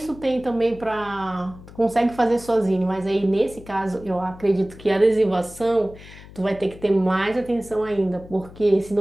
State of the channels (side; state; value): left; noise; hum, 19 dB below the sound